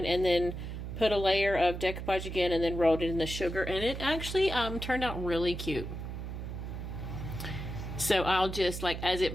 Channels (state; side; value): noise; right; hum, 7 dB below the sound